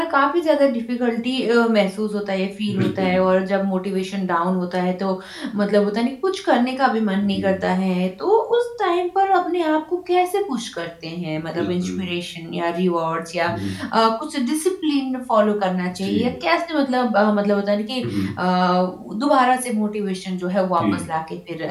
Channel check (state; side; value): identical; both; correlation 1.00